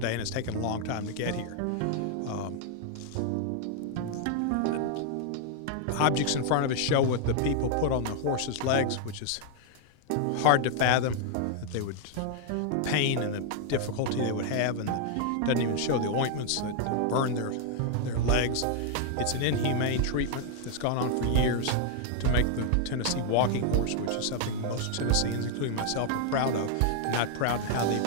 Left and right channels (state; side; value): different; both; correlation 0.00